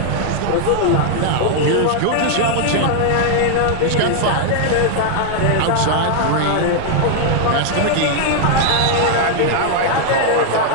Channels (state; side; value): different; both; correlation 0.00